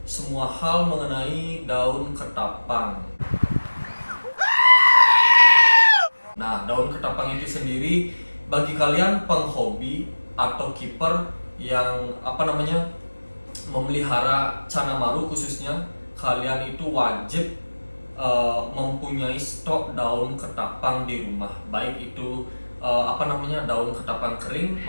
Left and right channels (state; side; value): inverted; both; correlation -1.00